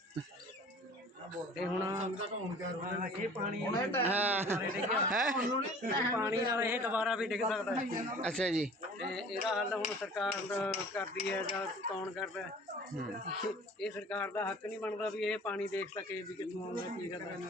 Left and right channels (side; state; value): both; normal; correlation 0.46